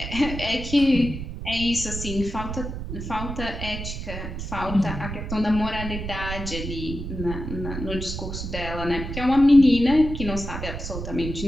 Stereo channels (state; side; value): noise; right; rumble, 7 dB below the sound